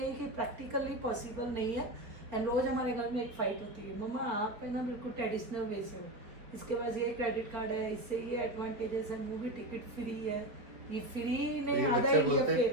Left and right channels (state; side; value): late; left; 4.3 ms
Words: कि प्रैक्टिकली पॉसिबल नहीं है। एंड रोज हमारे घर में एक फाइट होती है, मम्मा आप है ना बिल्कुल ट्रेडिशनल वे से हो, इसके पास ये क्रेडिट कार्ड है, इससे ये एडवांटेजेस है, मूवी टिकट फ्री है, ये फ्री नहीं आधा इंडिया